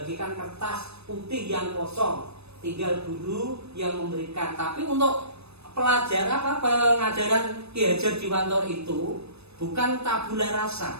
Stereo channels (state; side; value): late; left; 0.79 ms